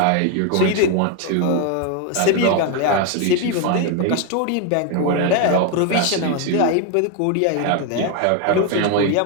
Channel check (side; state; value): both; different; correlation 0.01